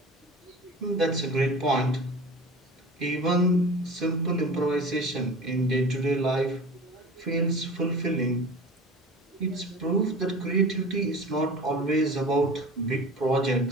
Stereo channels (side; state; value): both; normal; correlation 0.37